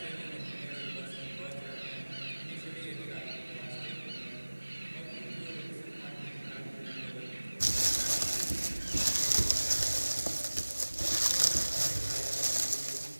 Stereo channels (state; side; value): inverted; both; correlation -1.00